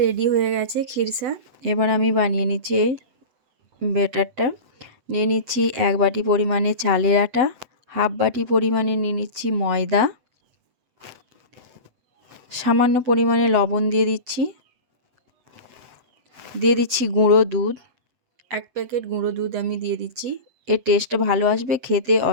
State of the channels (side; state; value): left; late; 7.9 ms